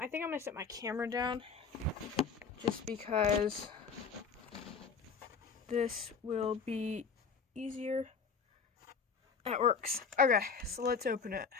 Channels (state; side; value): quieter; right; 5.6 dB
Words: think I'm gonna set my camera down just because this will be easier. That works. Okay, so let's open it.